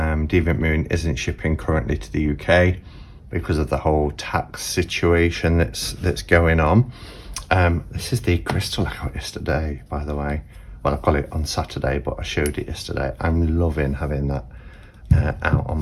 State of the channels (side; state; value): both; identical; correlation 1.00